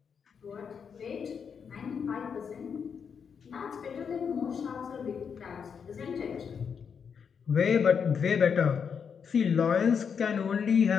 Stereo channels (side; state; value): right; quieter; 6.7 dB